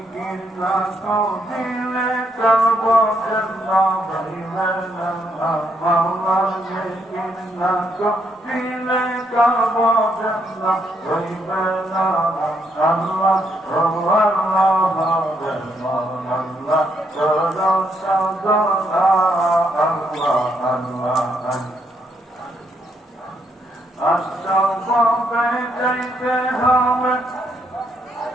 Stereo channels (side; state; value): both; normal; correlation 0.75